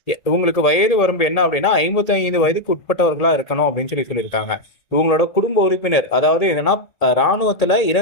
இவங்களுக்கு வயது வரம்பு என்ன அப்படின்னா 55 வயதுக்கு உட்பட்டவர்களா இருக்கணும் அப்படின்னு சொல்லியிருக்காங்க. இவங்களோட குடும்ப உறுப்பினர், அதாவது என்னன்னா ராணுவத்துல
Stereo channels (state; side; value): late; right; 1.7 ms